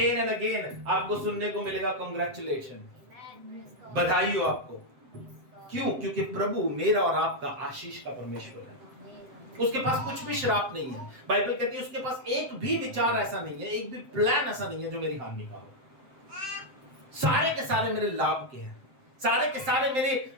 एंड अगेन आपको सुनने को मिलेगा कांग्रेचुलेशन, बधाई हो आपको। क्यों? क्योंकि प्रभु मेरा और आपका आशीष का परमेश्वर है। उसके पास कुछ भी श्राप नहीं है। बाइबल कहती है उसके पास एक भी विचार ऐसा नहीं है, एक भी प्लान ऐसा नहीं है जो मेरी हानि का हो। सारे के सारे मेरे लाभ के हैं, सारे के सारे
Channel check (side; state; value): left; late; 7.6 ms